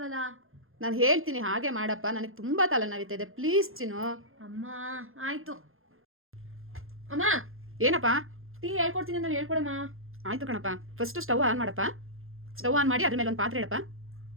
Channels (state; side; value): late; left; 0.60 ms